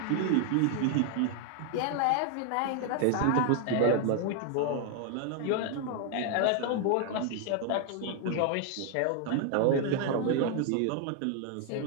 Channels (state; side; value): different; both; correlation 0.00